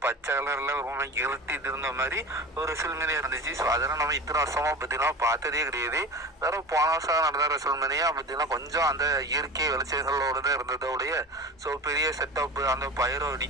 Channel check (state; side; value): normal; both; correlation 0.31